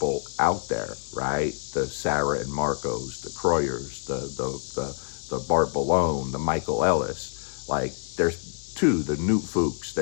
out there, right? The Sarah and Marcos, the Kroyers, the Bart Ballone, the Michael Ellis. Like there's the Newt Fuchs.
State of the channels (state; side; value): silent; right; digital silence